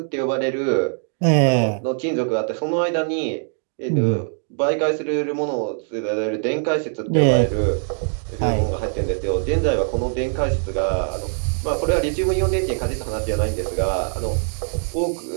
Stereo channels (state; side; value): silent; left; 64 dB below the other